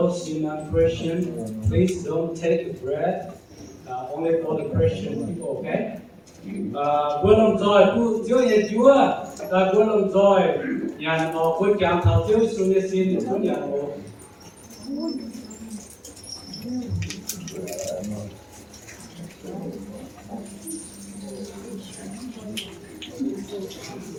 in Christian, please don't take the bread. Only for the Christian people, okay? Buat lòng joy, tu chiếu nhà Chúa, ta buat lòng joy, nhà họ buat cảm thảo chiếu xuống nhà xin Chúa nhà họ.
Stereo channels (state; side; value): identical; both; correlation 1.00